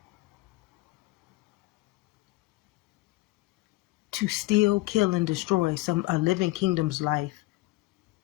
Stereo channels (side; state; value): right; quieter; 20.2 dB